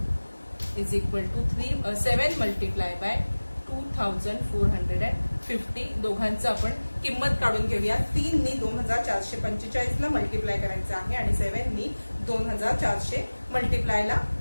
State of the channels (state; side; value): inverted; both; correlation -1.00